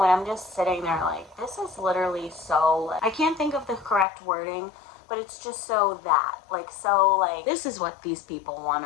And I'm just sitting there like, this is literally so, I can't think of the correct wording, but it's just so that, like, this is what these people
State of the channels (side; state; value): right; drops out; at 4.0 s